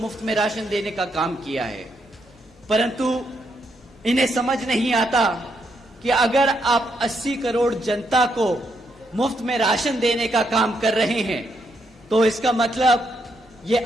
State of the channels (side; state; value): both; normal; correlation 0.78